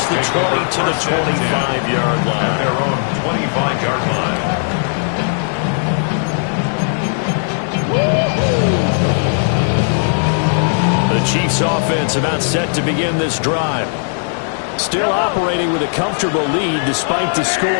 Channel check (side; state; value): right; silent; 68 dB below the other